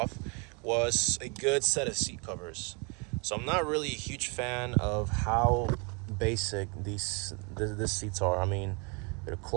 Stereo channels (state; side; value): quieter; left; 32.7 dB